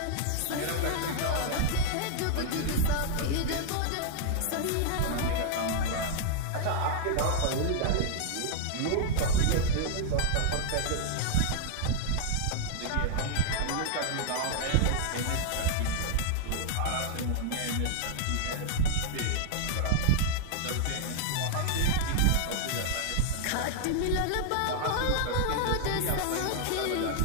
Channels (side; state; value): both; different; correlation -0.01